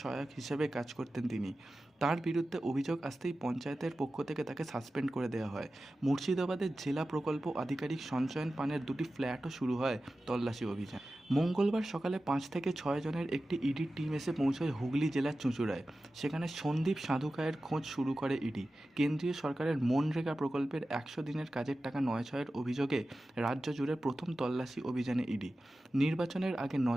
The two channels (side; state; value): both; normal; correlation 0.94